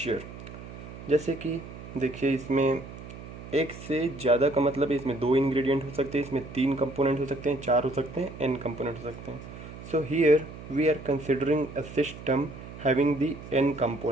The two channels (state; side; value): noise; right; hum, 13 dB below the sound